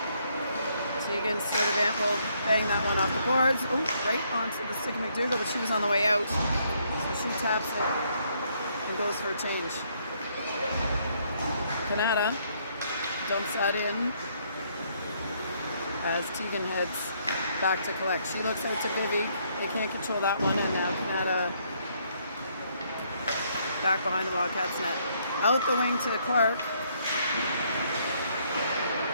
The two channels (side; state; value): both; inverted; correlation -0.70